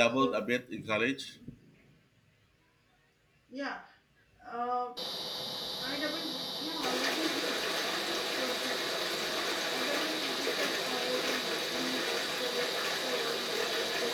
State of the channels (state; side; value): identical; both; correlation 1.00